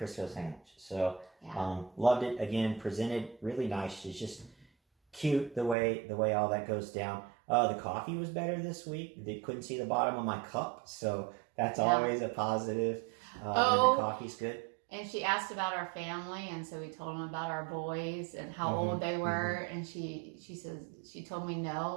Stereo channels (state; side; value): drops out; left; at 5.8 s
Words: sandwich. So Yeah. loved it. Again, presented really nice. It's just cute the way all that goes down. The coffee was better this week. They couldn't see the bottom of my cup, so that's always a positive. When the coffee's good. And she asked about our family, and so we told them about our boys and how old they were. And she says she told me